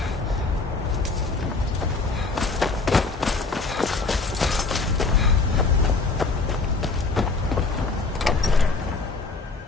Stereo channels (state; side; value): quieter; right; 3.9 dB